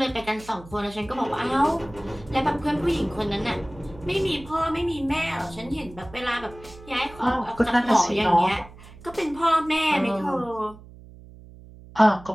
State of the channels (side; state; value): right; noise; hum, 19 dB below the sound